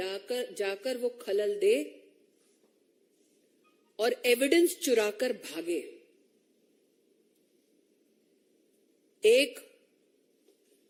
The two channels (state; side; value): identical; both; correlation 1.00